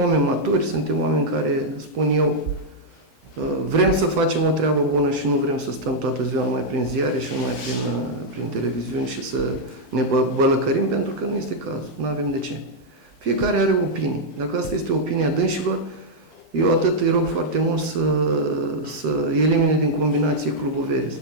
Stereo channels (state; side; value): normal; both; correlation -0.04